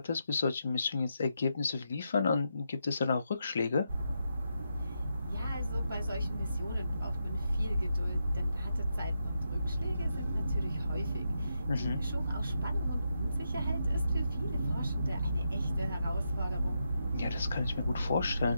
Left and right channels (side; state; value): both; inverted; correlation -0.84